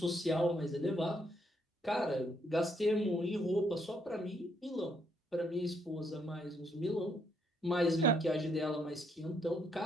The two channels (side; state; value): both; normal; correlation 0.72